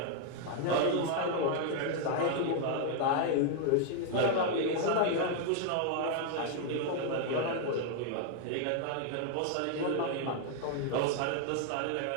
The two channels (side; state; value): both; different; correlation 0.00